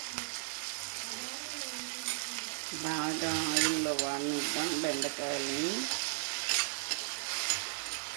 బాగా ఆయిల్లో వాడినిద్దాం బెండకాయలని.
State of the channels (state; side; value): silent; left; 54 dB below the other